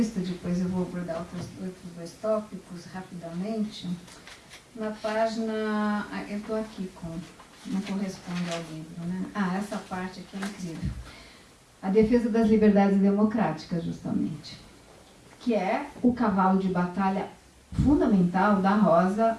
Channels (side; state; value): both; identical; correlation 1.00